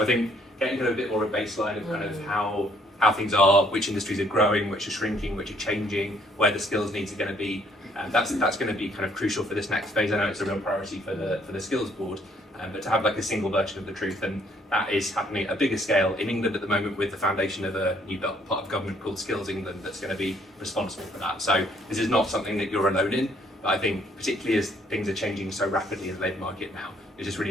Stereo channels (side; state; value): both; normal; correlation 0.65